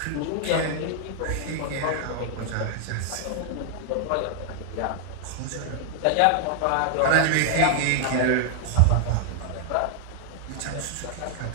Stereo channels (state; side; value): different; both; correlation 0.00